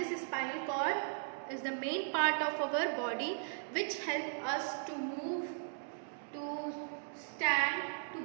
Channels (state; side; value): silent; left; digital silence